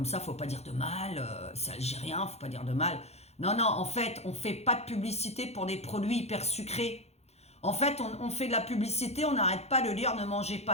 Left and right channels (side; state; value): right; late; 0.31 ms